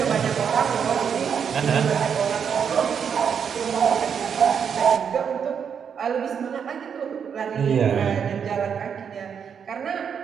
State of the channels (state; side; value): quieter; left; 7.3 dB